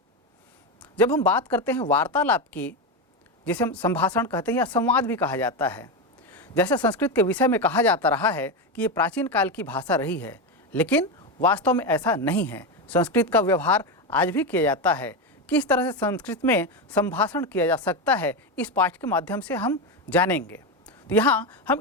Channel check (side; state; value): both; normal; correlation 0.13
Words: जब हम बात करते हैं वार्तालाप की, जिसे हम संभाषण कहते हैं या संवाद भी कहा जाता है, जैसे संस्कृत के विषय में कहा जाता रहा है कि ये प्राचीन काल की भाषा रही है, लेकिन वास्तव में ऐसा नहीं है। संस्कृत का व्यवहार आज भी किया जाता है। किस तरह से संस्कृत में संभाषण किया जा सकता है, इस पाठ के माध्यम से हम जानेंगे। तो यहाँ हम